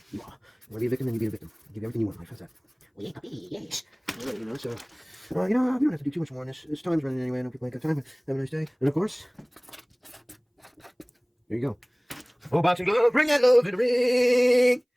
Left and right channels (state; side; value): identical; both; correlation 1.00